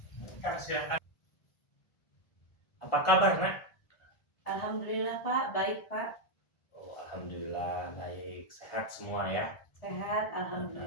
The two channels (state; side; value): late; right; 1.4 ms